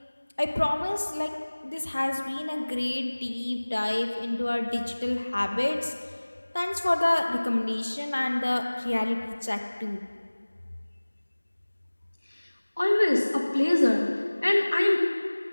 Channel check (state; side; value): inverted; both; correlation -1.00